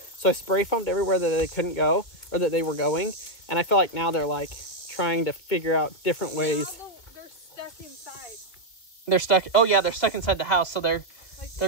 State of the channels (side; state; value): right; late; 2.6 ms